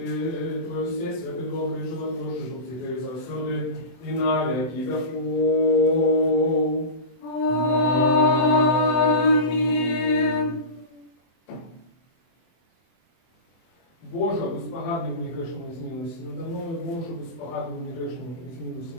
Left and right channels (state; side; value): late; right; 24 ms